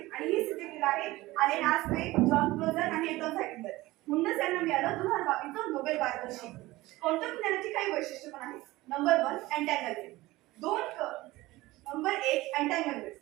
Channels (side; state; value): left; quieter; 18.9 dB